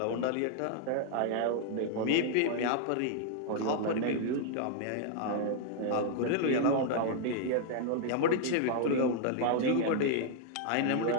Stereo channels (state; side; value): different; both; correlation -0.01